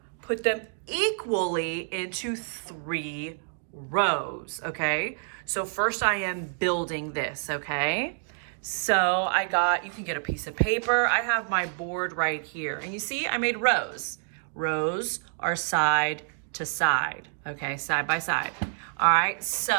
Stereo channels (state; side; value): silent; left; 59 dB below the other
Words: put them equally into 3 rows, okay? So first I am building this, okay? So you can get a piece of paper. I have my board right here. And you see, I made rows. Rows are side to side, okay? Side by side. All right,